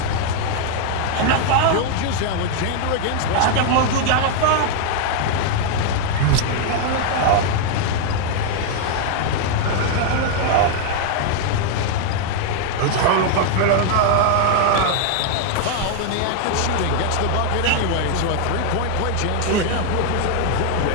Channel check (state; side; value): different; both; correlation 0.00